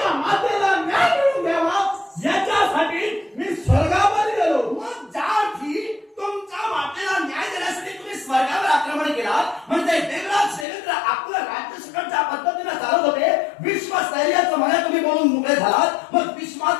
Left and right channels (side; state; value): right; drops out; at 10.7 s